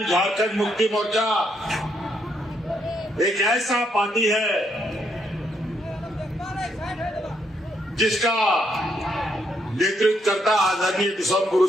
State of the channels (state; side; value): normal; both; correlation 0.75